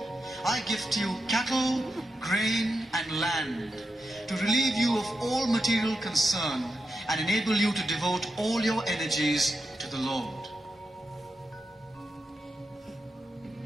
I gift you cattle, grain, and land to relieve you of all material concern and enable you to devote all your energies to the Lord.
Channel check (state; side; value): normal; both; correlation 0.87